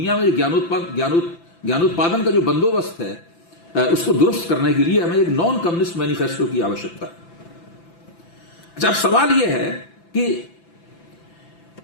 में ज्ञानोत्पादन का जो बंदोबस्त है उसको दुरुस्त करने के लिए हमें एक नॉन कम्युनिस्ट मैनिफेस्टो की आवश्यकता है। अच्छा, अब सवाल यह है कि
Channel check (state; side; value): late; right; 5.9 ms